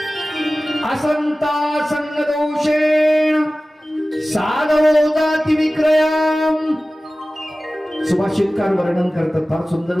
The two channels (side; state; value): both; normal; correlation 0.97